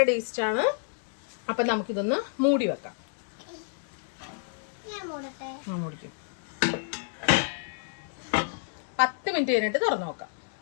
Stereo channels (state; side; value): silent; right; digital silence